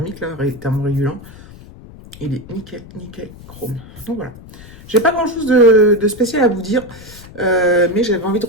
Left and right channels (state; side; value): noise; left; rumble, 18 dB below the sound